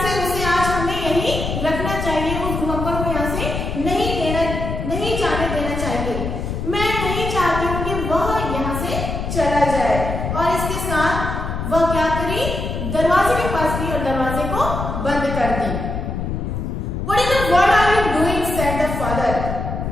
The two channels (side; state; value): left; noise; rumble, 4 dB below the sound